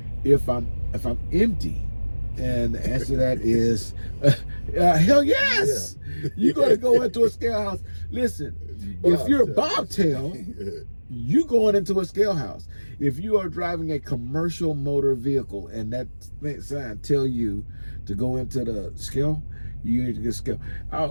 if I'm empty? And the answer to that is hell yes. Yeah. You're going to go into a scale house. Listen, if you're a bobtail, you going into a scale house. If you are driving a commercial motor vehicle and that sign tell you to go into the scale, you need to get scale.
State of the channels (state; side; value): inverted; both; correlation -1.00